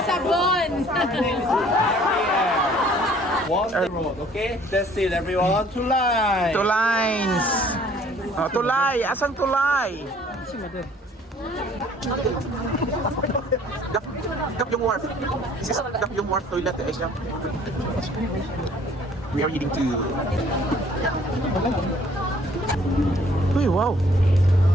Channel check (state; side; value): normal; both; correlation 0.57